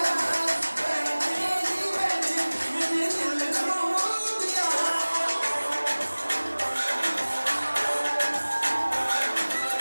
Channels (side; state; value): both; inverted; correlation -1.00